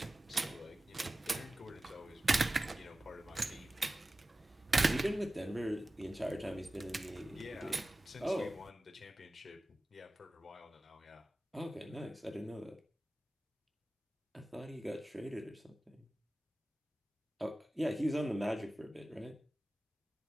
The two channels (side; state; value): both; normal; correlation 0.96